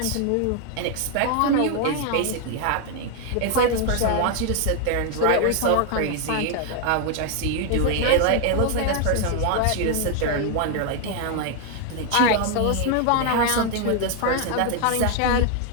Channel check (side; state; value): both; different; correlation 0.00